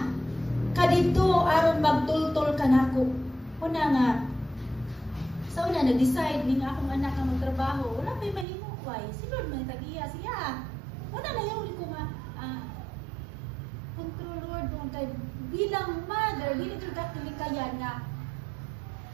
ka dito aron magtultol ka nako. Una nga, sa una nag-decide ni nga akong anak ang magtrabaho, wala may mahimo why? Si Lord may tagiya siya. Una na yung ko nga, control Lord, kay bilang mother, dili ka tilikayan na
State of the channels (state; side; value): drops out; left; at 8.5 s